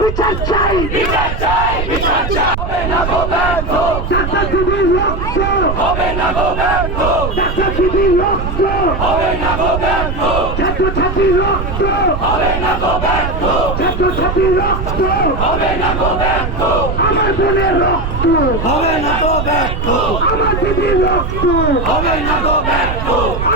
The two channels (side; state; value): right; noise; rumble, 4 dB below the sound